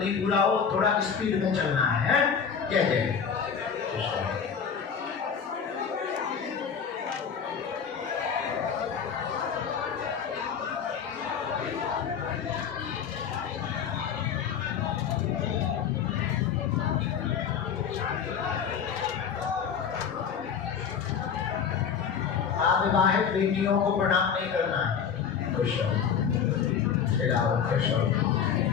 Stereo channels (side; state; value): right; quieter; 7.2 dB